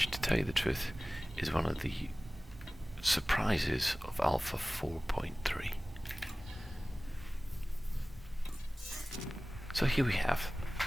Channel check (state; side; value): normal; both; correlation 0.98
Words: to tell you the truth, is one of the surprises of Alpha 4.3. So here we have